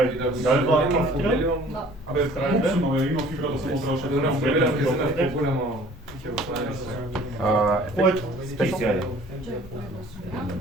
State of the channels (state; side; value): normal; both; correlation 0.52